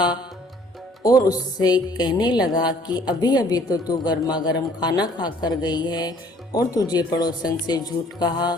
और उससे कहने लगा कि अभी अभी तो तू गर्मा गर्म खाना खा कर गई है और तुझे पड़ोसन से झूठ कहा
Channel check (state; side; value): normal; both; correlation 0.57